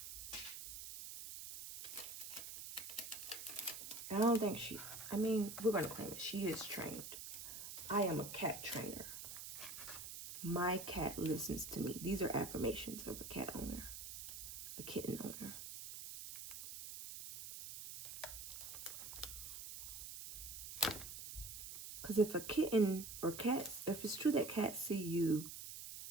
I don't think she, I mean, we're going to claim it. She is trained. I am a cat trainer. My cat listens to me. These are affirmations of a cat owner, a kitten owner. Because if a kitten or cats, if it's true that cats see you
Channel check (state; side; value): noise; right; hiss, 9 dB below the sound